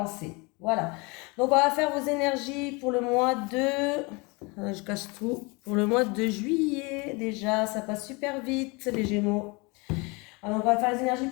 Voilà, donc on va faire vos énergies pour le mois de... Je cache tout. Pour le mois de juillet, déjà, ça passe super vite, les Gémeaux. Alors, on va faire les énergies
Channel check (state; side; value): quieter; right; 27.8 dB